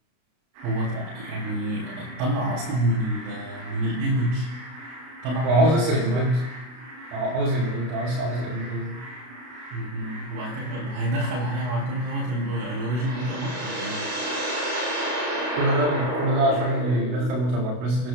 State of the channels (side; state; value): left; late; 32 ms